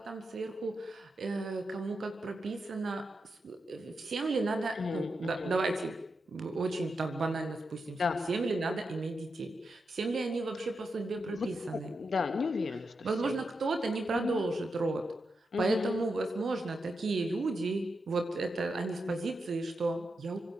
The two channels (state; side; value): normal; both; correlation 0.86